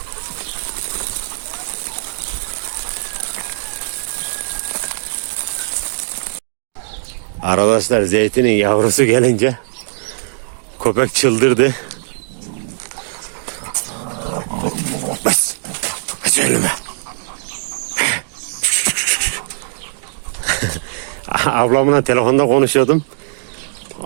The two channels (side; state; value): left; silent; digital silence